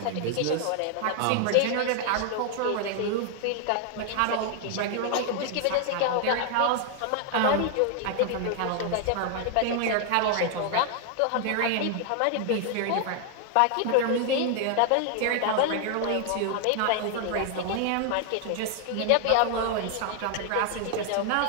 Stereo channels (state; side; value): different; both; correlation 0.00